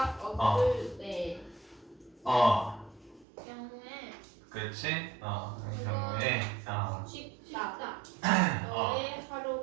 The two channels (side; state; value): left; drops out; at 3.2 s